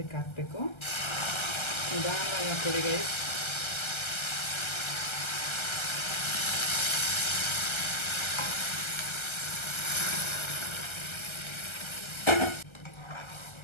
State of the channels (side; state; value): right; late; 1.3 ms